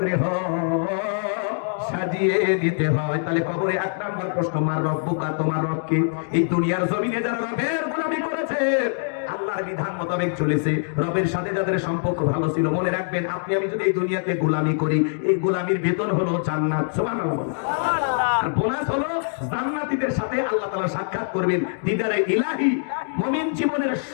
গৃহ সাজিয়ে দিতে হয়। তাহলে কবরে 1 নাম্বার প্রশ্ন, মার রব্বুকা, তোমার রব কি? এই দুনিয়ার জমিনে যারা রবের গোলামি করেছে, আল্লাহর বিধান মোতাবেক চলেছে, রবের সাথে যাদের সম্পর্ক ভালো ছিল, মনে রাখবেন, আপনি আমি যদি এই দুনিয়াতে গোলামি করি, এই গোলামির বেতন হলো জান্নাত। সুবহানাল্লাহ। আর বোনাস হলো জান্নাতীদের সাথে আল্লাহ তাআলা সাক্ষাৎ করবেন, দিদারে ইলাহি। মুমিন জীবনের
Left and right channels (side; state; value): right; silent; digital silence